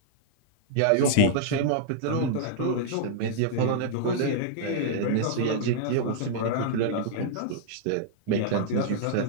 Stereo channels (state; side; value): different; both; correlation -0.01